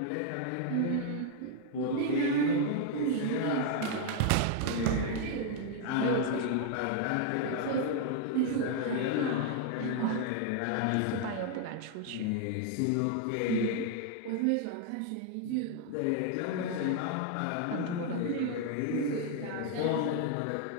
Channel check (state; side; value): different; both; correlation 0.00